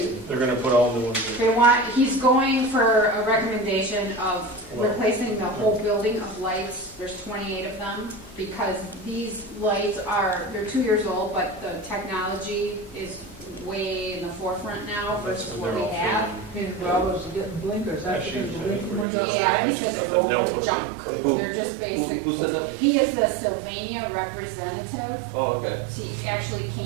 They're gonna put all new ones in. They want, he's going for a recommendation of replacing the whole building of lights, there's 28 of them, because these lights are, they're 2 years old, but the technology is way in the forefront now versus That's what when we they're all have. His brothers are getting blinkers, that's Actually, because the I think blinking we're windows. Yeah, he said they're They'll all put junk, it Who- they're just basic. who said that? He is the Sylvania representative, oh, okay, he actually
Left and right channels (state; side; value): drops out; left; at 19.1 s